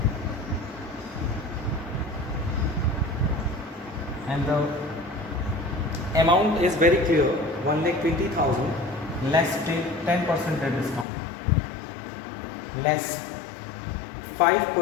and the amount is very clear, 1,20,000. Less 10% trade discount, less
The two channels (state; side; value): drops out; right; at 11.1 s